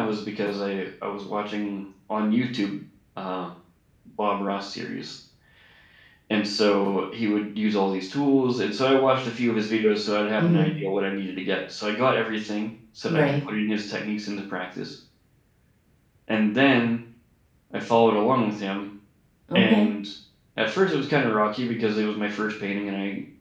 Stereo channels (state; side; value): identical; both; correlation 1.00